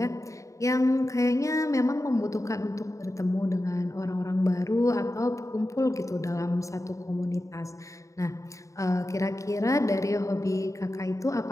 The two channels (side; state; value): right; late; 0.15 ms